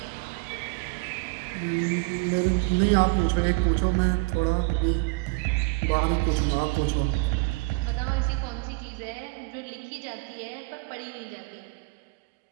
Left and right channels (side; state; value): left; quieter; 25.3 dB